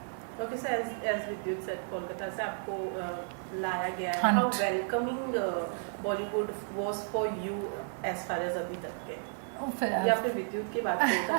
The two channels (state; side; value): silent; left; digital silence